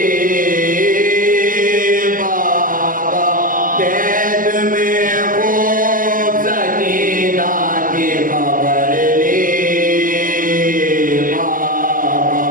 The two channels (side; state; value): left; late; 0.40 ms